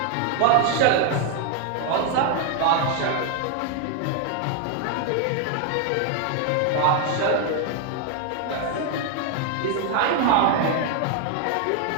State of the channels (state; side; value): different; both; correlation 0.00